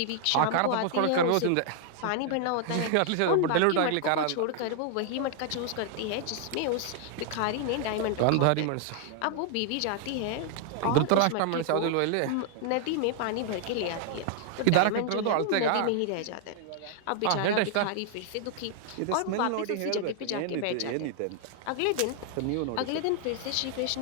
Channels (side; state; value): both; different; correlation 0.00